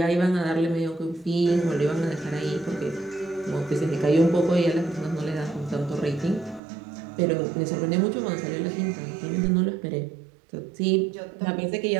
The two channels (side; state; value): left; drops out; at 6.6 s